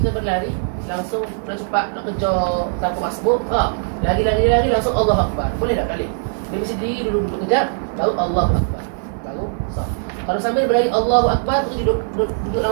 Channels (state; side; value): silent; left; digital silence